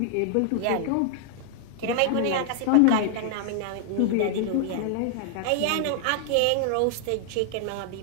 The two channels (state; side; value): different; both; correlation 0.00